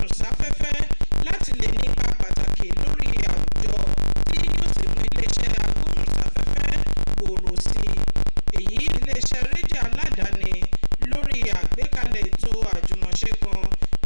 láti lè nípa pàtàkì lórí àwùjọ tí yóò sì mú iléeṣẹ́ agbóhùnsáfẹ́fẹ́ gbòòrò sí i. Èyí iléeṣẹ́ rédíò aládàáni lórí àgbékalẹ̀ ètò àjùmọ̀ṣe kan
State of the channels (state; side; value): inverted; both; correlation -1.00